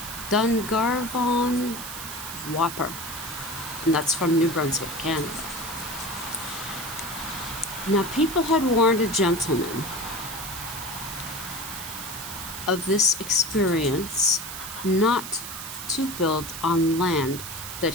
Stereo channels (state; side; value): noise; right; hiss, 9 dB below the sound